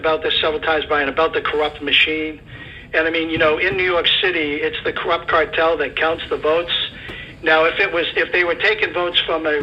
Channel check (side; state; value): both; identical; correlation 1.00